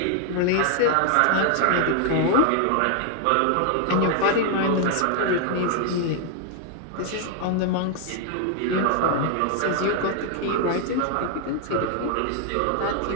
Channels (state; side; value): different; both; correlation 0.00